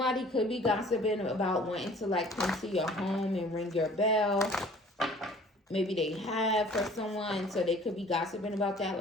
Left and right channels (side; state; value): both; normal; correlation 0.51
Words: could be gossiping about wanting to like come to your home and ring your bell. Maybe they have for someone, so they could be gossiping about that.